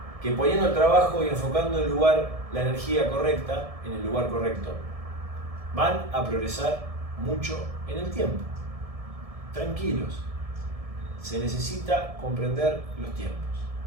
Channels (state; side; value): late; left; 1.7 ms